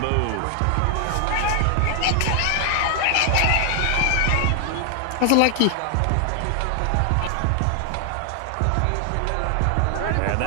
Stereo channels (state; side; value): different; both; correlation 0.00